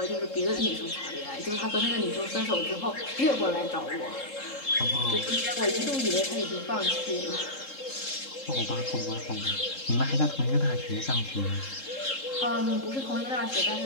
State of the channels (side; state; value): right; late; 3.7 ms